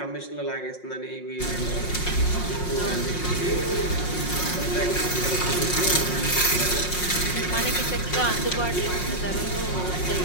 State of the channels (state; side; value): late; right; 5.5 ms